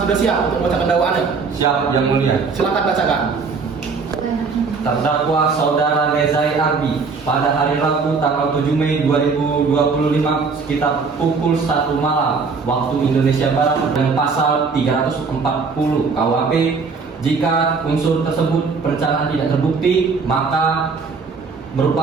sudah siap untuk membacakan dakwaannya? Siap, Yang Mulia. Silakan bacakan. Terdakwa Saudara Nezai Arbi pada hari Rabu tanggal 7 Mei 2025 sekitar pukul 1 malam waktu Indonesia Barat dengan pasal 340 KUHP. Jika unsur tersebut perencanaan tidak terbukti, maka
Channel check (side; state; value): left; quieter; 4.8 dB